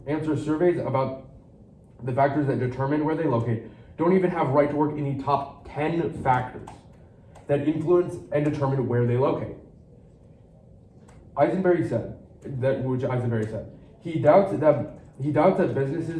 answer surveys about the factors that determine where they locate don't even have right to work in the top 10 factors that influence and determine where they locate. Eisenberry said, he doubts that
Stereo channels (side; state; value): both; identical; correlation 1.00